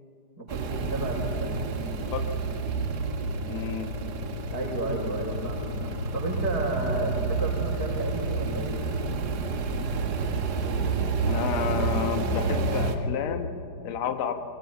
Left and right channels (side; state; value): right; late; 4.9 ms